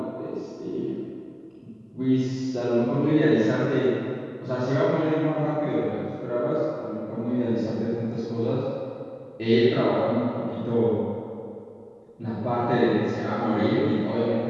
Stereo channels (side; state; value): both; identical; correlation 1.00